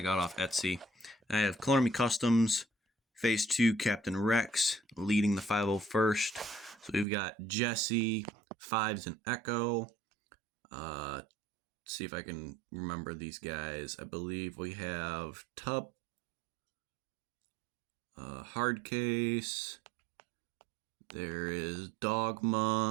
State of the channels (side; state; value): left; drops out; at 7.1 s